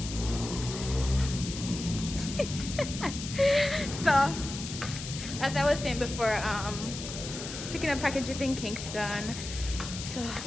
So, as I was saying before, picking up packages in Kingston. So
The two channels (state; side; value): noise; left; hiss, 9 dB below the sound